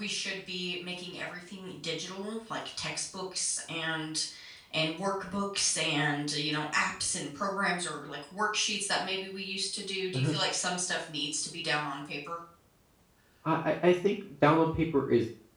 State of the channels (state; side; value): identical; both; correlation 1.00